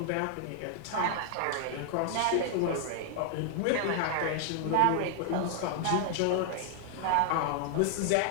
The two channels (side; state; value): both; different; correlation 0.00